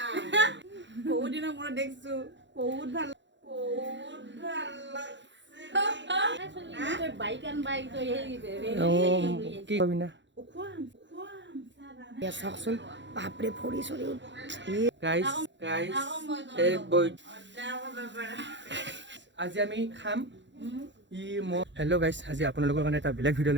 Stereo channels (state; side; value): late; left; 0.53 ms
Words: বহুত দিনৰ মূৰত দেখছো বহুত ভাল লাগছে বাইক আন বাইক তো কি কবি না চাওকচোন বাপৰে ফৰি চৰি গাইস এই বই আজি আমি খাম হেল্ল' গাইছ আজি আপোনালোকৰ কাৰণে এটা বেলেগ ভিডিঅ'